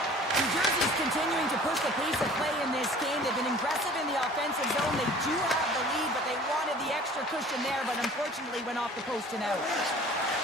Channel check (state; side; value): normal; both; correlation 0.48